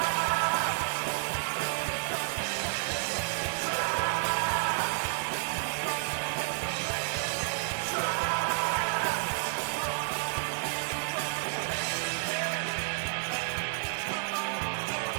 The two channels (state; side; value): silent; left; digital silence